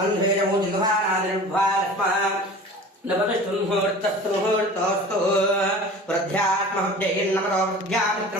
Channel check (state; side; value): normal; both; correlation 0.39